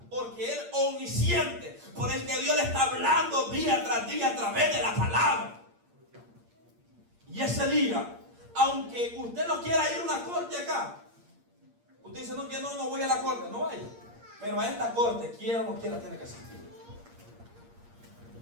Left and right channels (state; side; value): late; left; 8.6 ms